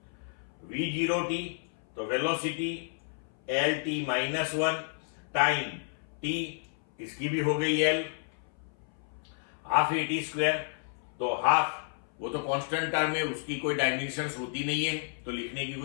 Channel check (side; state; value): right; silent; 57 dB below the other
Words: v0t तो वेलोसिटी lt -1, टाइम t इसकी भी हो गई l। हाफ at स्क्वायर तो हाफ वो तो कांस्टेंट टर्म है, उसकी कोई डायमेंशंस होती नहीं है, तो लिखने की